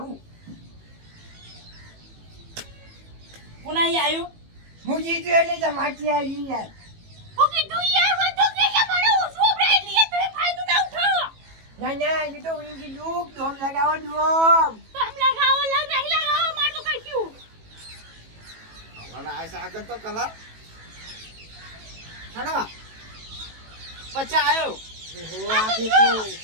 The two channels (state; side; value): late; left; 18 ms